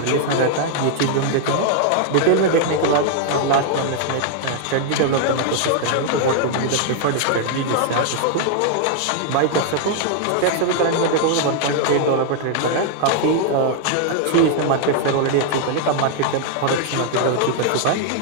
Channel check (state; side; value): different; both; correlation 0.00